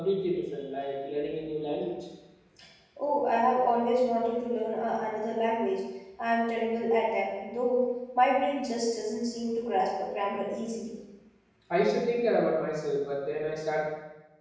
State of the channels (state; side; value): identical; both; correlation 1.00